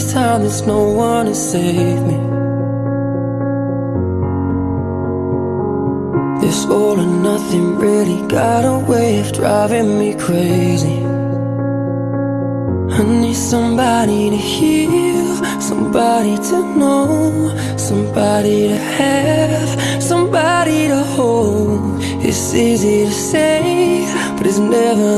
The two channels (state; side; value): identical; both; correlation 1.00